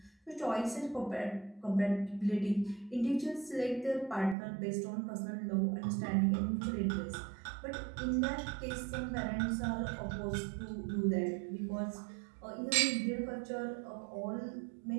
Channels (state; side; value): drops out; left; at 4.4 s